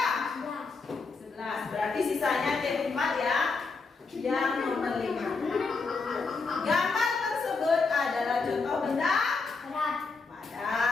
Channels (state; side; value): quieter; right; 4.3 dB